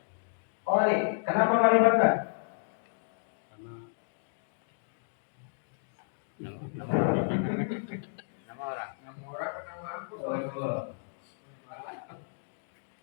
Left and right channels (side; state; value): right; silent; digital silence